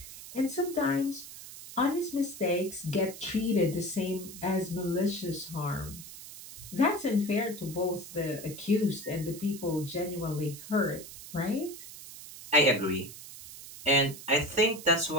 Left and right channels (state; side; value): noise; right; hiss, 14 dB below the sound